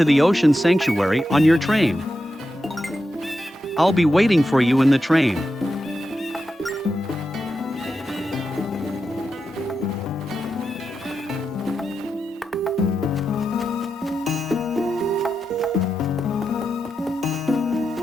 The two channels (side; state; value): both; normal; correlation 0.88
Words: the Ocean Sanctuary on your train. I'll be waiting for you in the train.